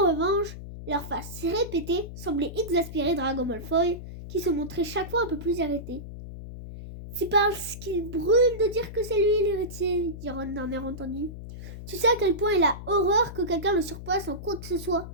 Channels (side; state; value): left; noise; hum, 11 dB below the sound